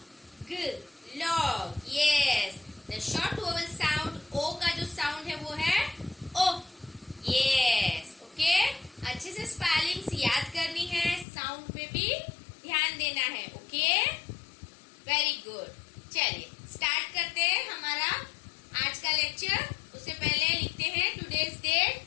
ग, log, yes. The short vowel sound o का जो साउंड है वो है ओ, यस, ओके। अच्छे से स्पेलिंग्स याद करनी है, साउंड पे भी ध्यान देना है, ओके, वेरी गुड। चलिए स्टार्ट करते हैं हमारा आज का लेक्चर। उससे पहले लिखते हैं today's date.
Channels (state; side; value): drops out; right; at 11.2 s